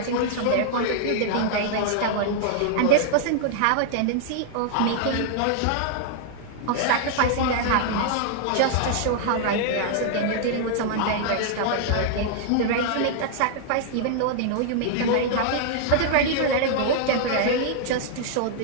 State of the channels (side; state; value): both; different; correlation -0.01